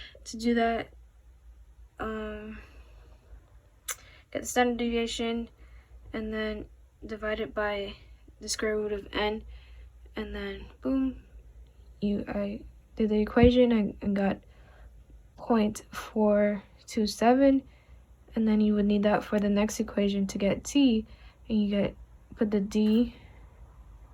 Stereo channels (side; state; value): both; identical; correlation 1.00